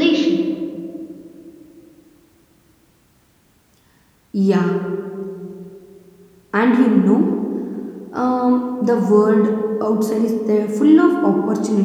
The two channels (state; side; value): identical; both; correlation 1.00